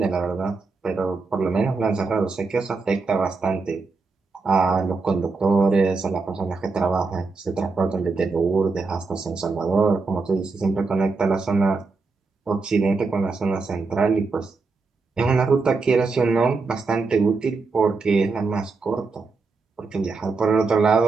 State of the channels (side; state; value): left; quieter; 4.2 dB